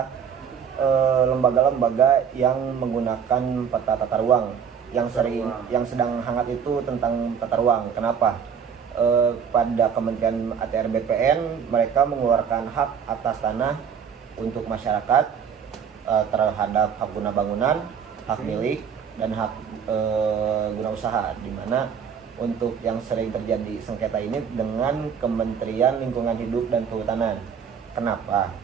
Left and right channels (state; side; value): quieter; left; 7.3 dB